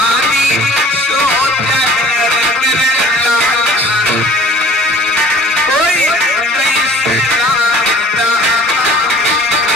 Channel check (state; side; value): normal; both; correlation 0.49